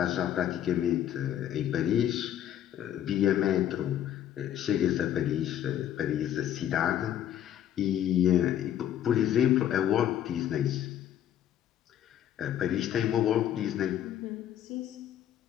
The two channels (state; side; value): quieter; right; 10.9 dB